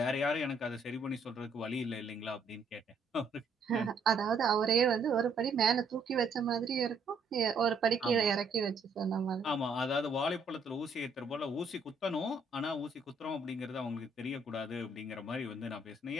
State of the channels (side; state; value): left; quieter; 3.4 dB